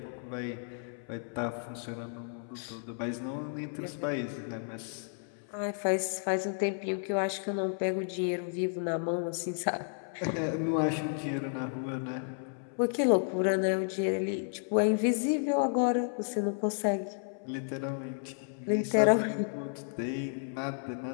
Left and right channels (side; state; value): right; silent; 56 dB below the other